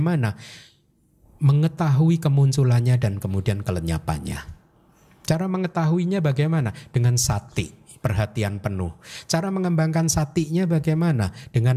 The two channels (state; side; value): identical; both; correlation 1.00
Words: Mengetahui kemunculannya dan kemudian kelenyapannya. Cara mengetahuinya bagaimana? Dengan sati, perhatian penuh. Cara mengembangkan satinya bagaimana?